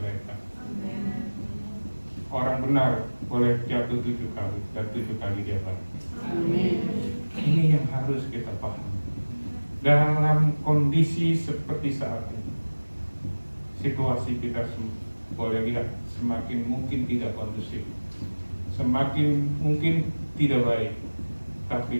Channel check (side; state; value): both; inverted; correlation -1.00